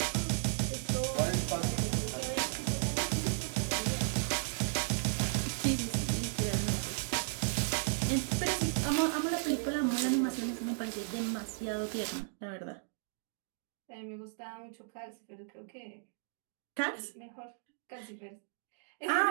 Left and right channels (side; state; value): left; silent; digital silence